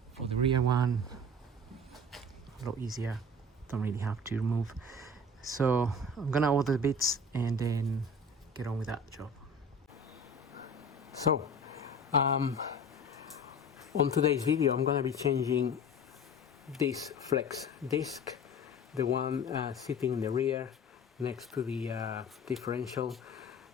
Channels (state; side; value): normal; both; correlation 0.38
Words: For the rear one, a lot easier, don't really have to remove. So I'm gonna order the bits and then get on with that job. So On today's video I'm going to be changing this flex disc, the one sitting in the rear next to the differential.